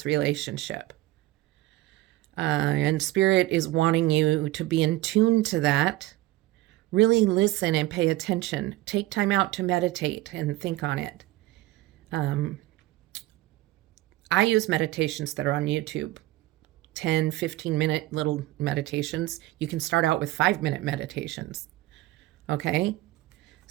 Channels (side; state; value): left; quieter; 17.4 dB